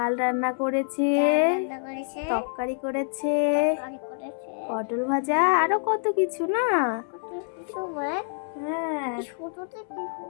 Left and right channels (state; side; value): silent; right; 61 dB below the other